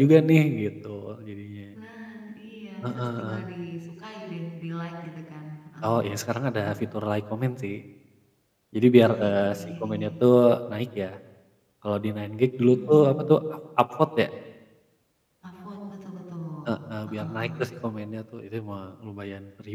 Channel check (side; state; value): both; identical; correlation 1.00